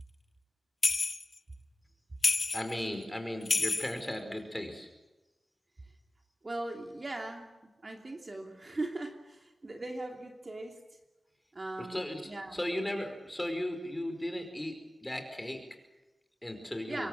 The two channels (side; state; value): both; normal; correlation 0.96